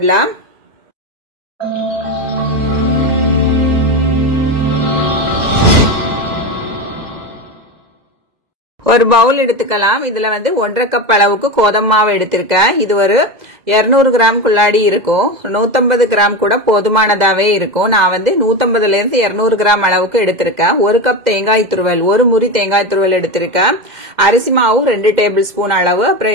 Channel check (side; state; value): left; late; 2.0 ms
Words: ஒரு பவுல் எடுத்துக்கலாம். இதுல வந்து 1.5 கப் அளவுக்கு கோதுமை மாவு எடுத்திருக்கேன். இது ஒரு 200 கிராம் குள்ளாடி இருக்கும். 150 கிராம் கூட போதுமானதாவே இருக்கும். நான் வந்து 150 ல இருந்து 200 கிராம் அளவுக்கு எடுத்திருக்கேன். 1 கப் தேங்காய் துருவல், ஒரு முறி தேங்காய் துருவல் எடுத்திருக்கேன். அரிசி மாவு 2 டேபிள் ஸ்பூன் அளவு,